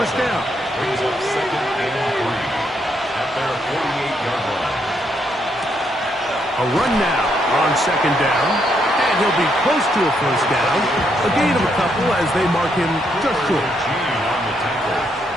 down. Brings up second and 3 at their 48-yard line. A run now on second down. And he'll be close to a first down. A gain of a couple as they mark him just short. On the tackle.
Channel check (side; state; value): both; normal; correlation 0.76